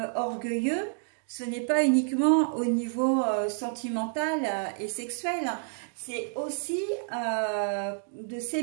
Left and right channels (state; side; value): silent; left; 57 dB below the other